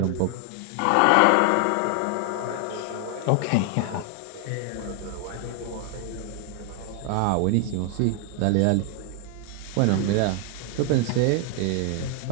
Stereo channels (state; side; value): different; both; correlation 0.00